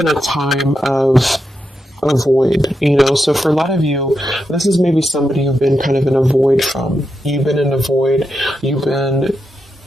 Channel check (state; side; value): normal; both; correlation 0.86